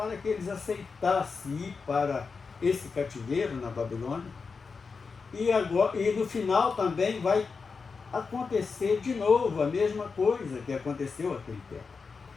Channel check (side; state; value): right; quieter; 4.9 dB